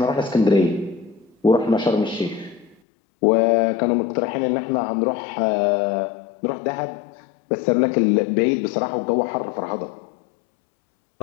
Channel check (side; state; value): right; drops out; at 2.8 s